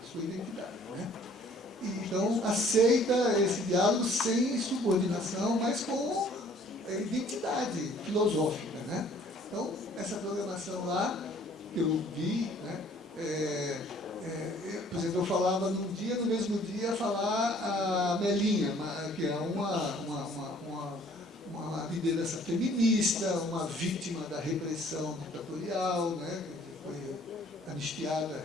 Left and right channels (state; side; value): normal; both; correlation 0.56